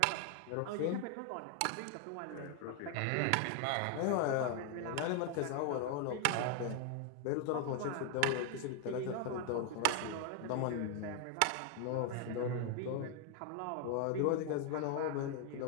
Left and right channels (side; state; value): both; different; correlation 0.00